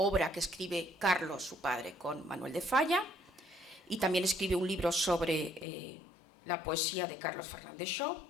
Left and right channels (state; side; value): drops out; right; at 5.7 s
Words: que escribe Carlos, su padre, con Manuel de Falla, y también escribe un libro sobre la poesía de Carlos Fernández Shaw.